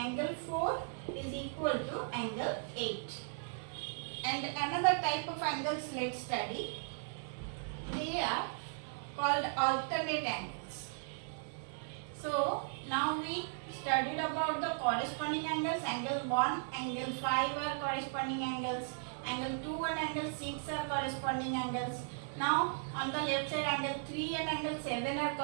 4 is equal to angle 8. And another type of angles let's study. They are called alternate angles. So now we studied about the corresponding angles. Angle 1, angle 5 are corresponding angles. Angle 2 and angle 6 are corresponding angles. Now on the left side, angle 3 and angle 7 are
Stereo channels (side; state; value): left; silent; 53 dB below the other